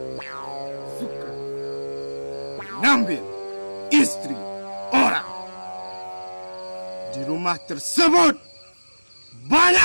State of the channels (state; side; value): inverted; both; correlation -1.00